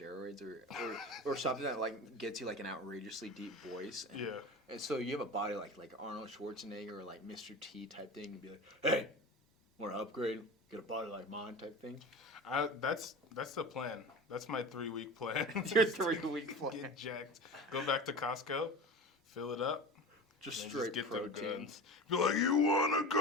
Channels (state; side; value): normal; both; correlation 0.32